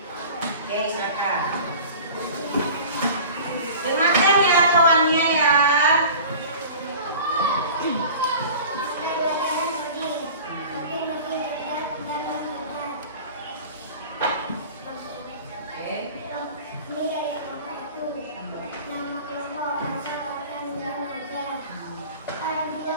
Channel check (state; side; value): inverted; both; correlation -0.40